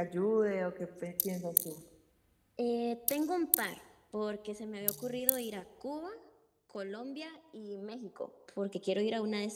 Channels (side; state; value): both; identical; correlation 1.00